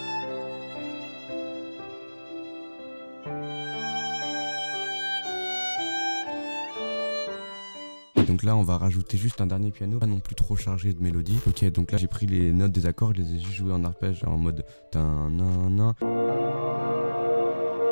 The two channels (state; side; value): inverted; both; correlation -1.00